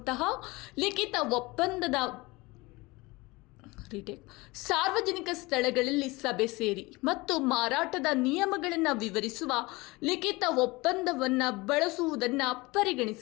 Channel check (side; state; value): right; quieter; 23.0 dB